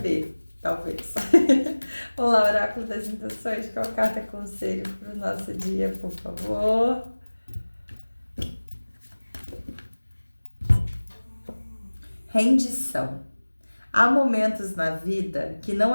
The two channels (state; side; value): inverted; both; correlation -1.00